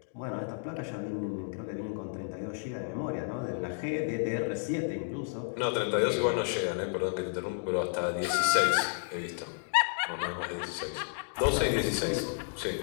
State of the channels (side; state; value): right; silent; digital silence